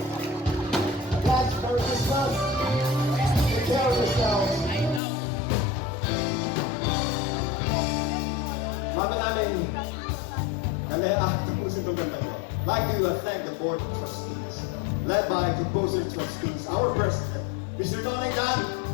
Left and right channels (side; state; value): right; drops out; at 5.0 s